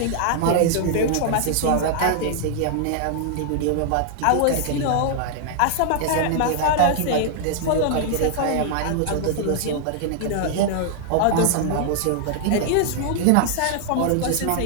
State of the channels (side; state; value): both; different; correlation 0.00